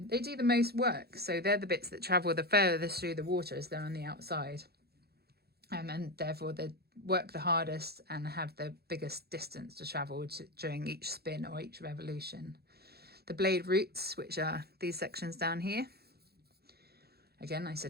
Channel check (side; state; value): left; late; 0.46 ms